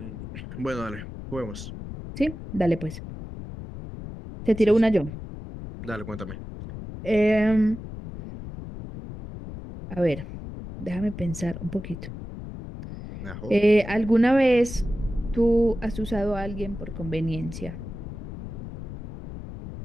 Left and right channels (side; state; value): left; noise; rumble, 10 dB below the sound